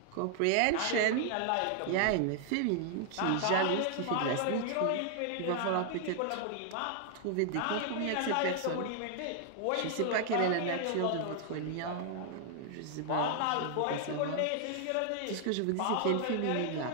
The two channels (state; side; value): different; both; correlation 0.00